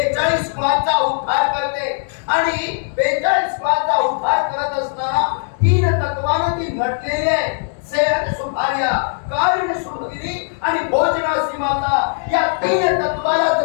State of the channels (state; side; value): silent; right; 67 dB below the other